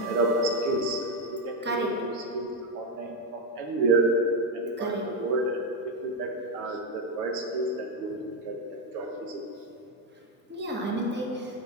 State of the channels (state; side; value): normal; both; correlation 0.06